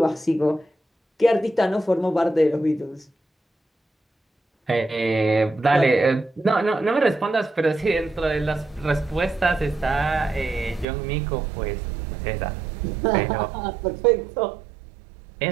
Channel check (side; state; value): left; drops out; at 10.9 s